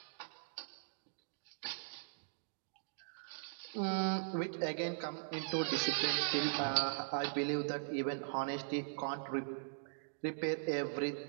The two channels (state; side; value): silent; left; digital silence